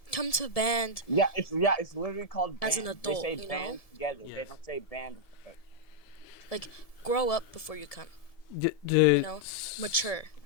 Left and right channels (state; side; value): late; right; 1.7 ms